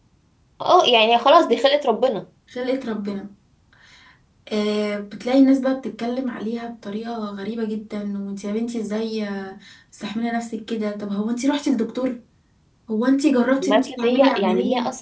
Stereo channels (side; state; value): both; identical; correlation 1.00